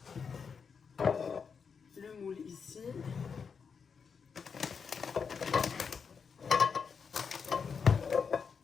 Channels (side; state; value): right; quieter; 6.0 dB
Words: Le moule ici.